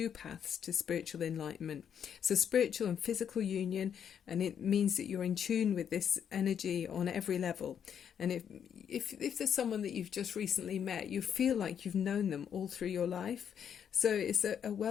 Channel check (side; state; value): right; quieter; 8.3 dB